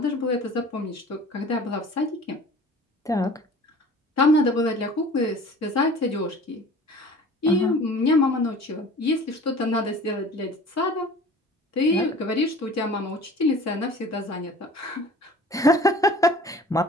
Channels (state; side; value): normal; both; correlation 0.44